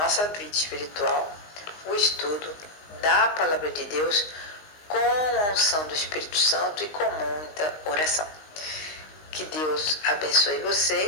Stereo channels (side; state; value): right; late; 19 ms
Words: vida espiritual o estudo da palavra de Deus com a unção do Espírito Santo e com muita oração. Que Deus abençoe